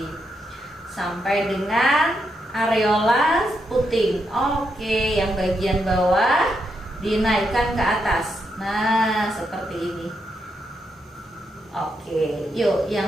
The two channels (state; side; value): normal; both; correlation 0.81